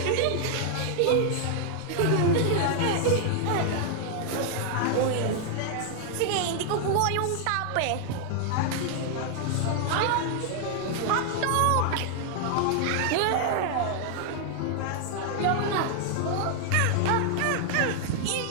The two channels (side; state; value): both; different; correlation 0.00